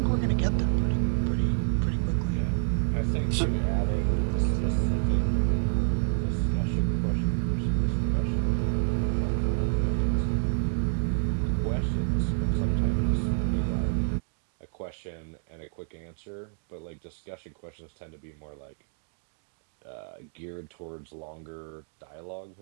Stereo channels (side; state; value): left; silent; digital silence